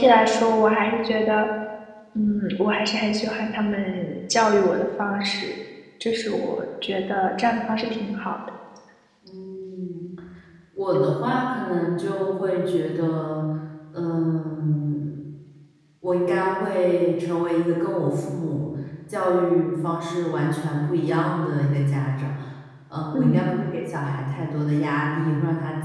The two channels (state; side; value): identical; both; correlation 1.00